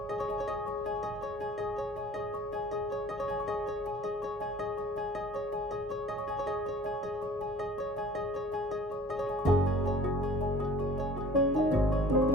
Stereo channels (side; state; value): both; normal; correlation 0.48